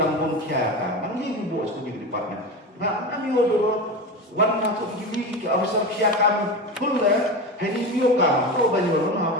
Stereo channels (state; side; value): normal; both; correlation 0.24